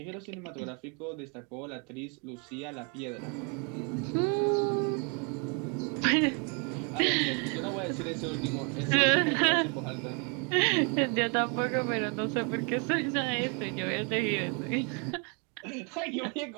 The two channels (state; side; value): quieter; left; 35.4 dB